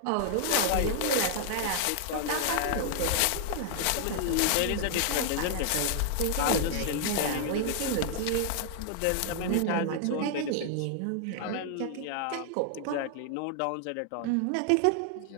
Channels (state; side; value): different; both; correlation 0.00